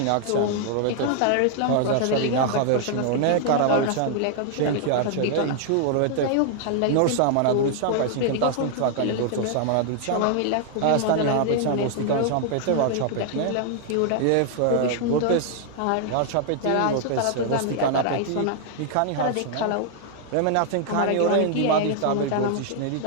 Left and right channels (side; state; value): both; different; correlation 0.00